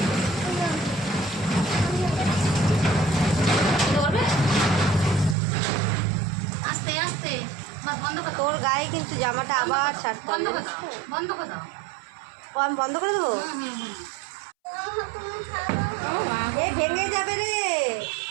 করবে আস্তে আস্তে। বন্ধ করে দাও, তোর গায়ে কিন্তু জামাটা আবার ছাড়তে বন্ধ হবে। করে দাও, বন্ধ করে দাও। ও আমি বন্ধ করে দেবো? তুমি খাবো? ও মা গো। এ ভেঙে যাবে রে।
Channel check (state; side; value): drops out; left; at 5.4 s